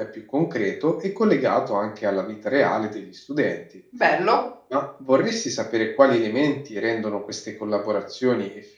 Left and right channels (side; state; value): both; identical; correlation 1.00